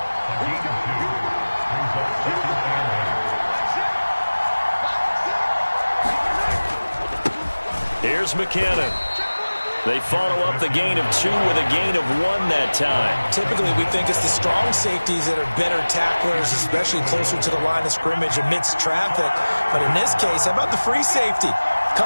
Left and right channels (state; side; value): inverted; both; correlation -1.00